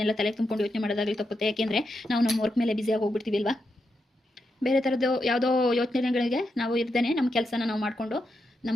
ತಲೆ ತುಂಬಿಕೊಂಡು ಯೋಚನೆ ಮಾಡೋದಾಗಲಿ ತಪ್ಪುತ್ತೆ. ಯಾಕೆಂದರೆ ನಾವು ನಮ್ಮ ವರ್ಕ್ ಮೇಲೆ ಬ್ಯುಸಿಯಾಗಿ ಹೋಗ್ಬಿಡ್ತೀವಿ ಅಲ್ವಾ. ಬೇರೆ ಥರದ್ದು ಯಾವುದೋ ಯೋಚನೆಗಳಿಗೆ ನಾವು ಇರ್ದೇನೆ ನಮ್ಮ ಕೆಲಸನ ನಾವು ಮಾಡಿಕೊಂಡು,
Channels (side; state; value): both; normal; correlation 0.85